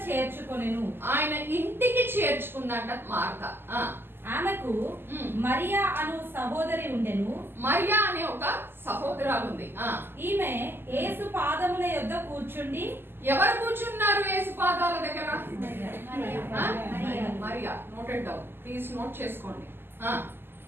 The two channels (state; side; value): late; left; 0.10 ms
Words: చేర్చుకొనెను. ఆయన ఇంటికి చేర్చుకుందంట మార్తా. ఆ, ఆమెకు ఉమ్. మరియా అను సహోదరి ఉండెను. మరియా అనే ఒక సహోదరాలు ఉంది. ఆ, ఈమె యేసు పాదముల యొద్ద కూర్చుండి ఎవరు కూర్చున్నారు యేసు పాదాల దగ్గర? ఆ? Mariya. Mariya. Noted down please, note చేసుకోండి. ఆ,